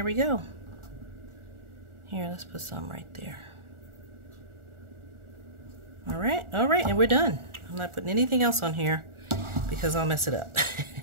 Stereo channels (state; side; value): late; left; 1.4 ms